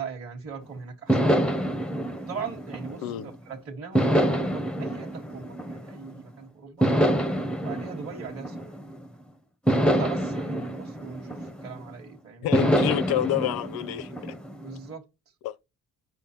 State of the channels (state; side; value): normal; both; correlation 0.64